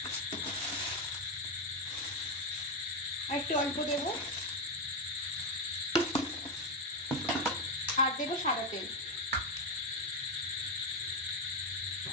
আর একটু অল্প দেবো, আর দেবো সাদা তেল।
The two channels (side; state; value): both; normal; correlation 0.08